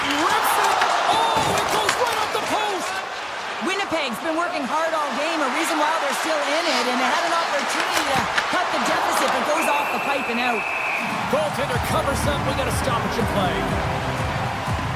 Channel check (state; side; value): identical; both; correlation 1.00